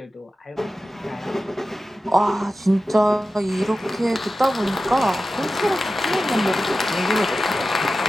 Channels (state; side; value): normal; both; correlation 0.93